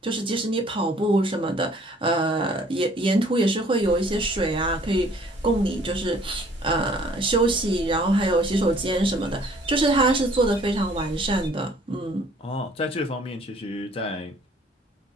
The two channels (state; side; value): normal; both; correlation 0.57